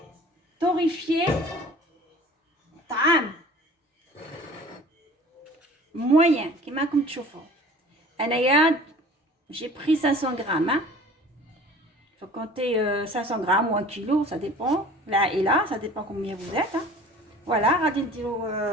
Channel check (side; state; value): both; normal; correlation 0.45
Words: torréfier طعام موين كيما راكم تشوفوا. انايا j'ai pris 500 grammes hein. faut compter 500 grammes ou 1 kilo, ça dépend العائله، ça dépend combien vous êtes hein. voilà غادي نديرو